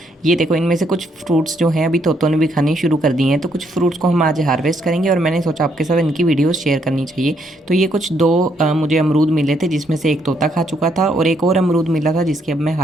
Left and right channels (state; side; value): normal; both; correlation 0.73